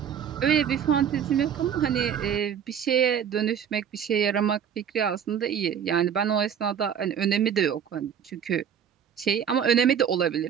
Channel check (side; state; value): left; quieter; 8.3 dB